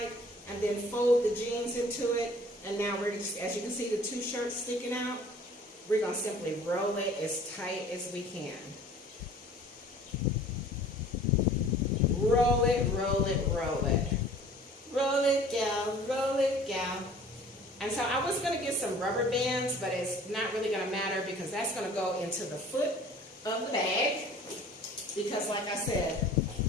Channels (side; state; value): both; normal; correlation 0.49